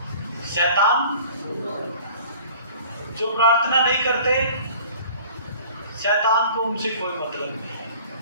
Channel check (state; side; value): inverted; both; correlation -0.47